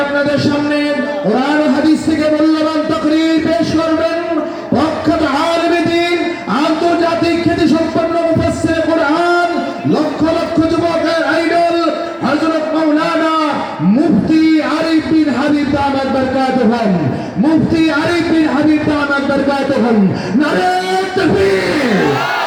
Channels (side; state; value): both; identical; correlation 1.00